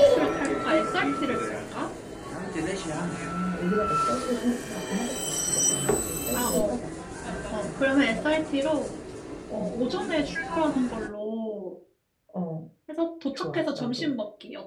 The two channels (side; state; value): both; identical; correlation 1.00